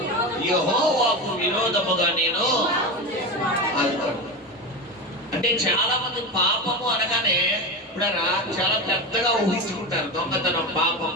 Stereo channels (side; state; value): both; normal; correlation 0.21